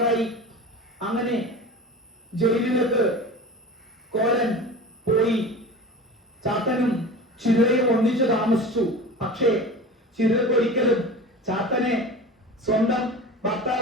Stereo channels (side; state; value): both; normal; correlation 0.34